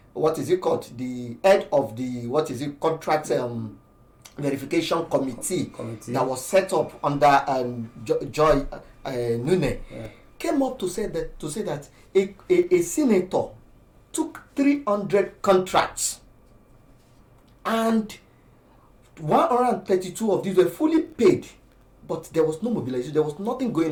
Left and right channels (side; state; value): both; identical; correlation 1.00